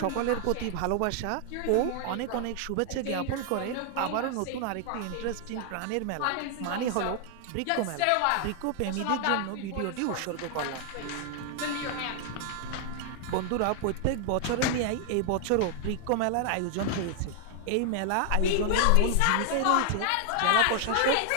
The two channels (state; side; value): different; both; correlation 0.00